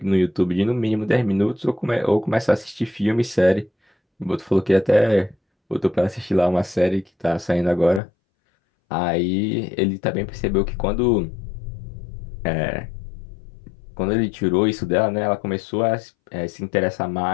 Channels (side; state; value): right; drops out; at 8.0 s